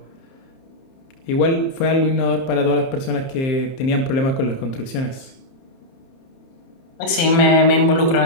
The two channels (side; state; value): right; late; 30 ms